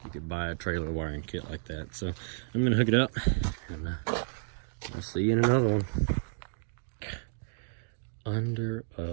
you could buy a trailer wiring kit like that. So I'm gonna hook it up, and I'll see you in another one. Under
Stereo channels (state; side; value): silent; left; digital silence